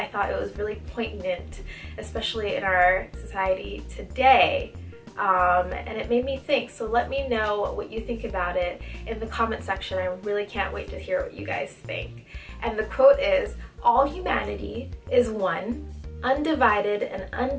thought it was really poignant, especially in our society today. And it made me think. So let me know what you think about it in the comment section. I really can't wait to hear what you guys think. And the quote is, "All humanity is one, undivided and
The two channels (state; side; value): identical; both; correlation 1.00